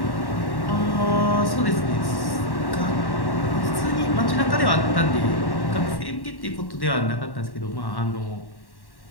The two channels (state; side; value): late; right; 1.1 ms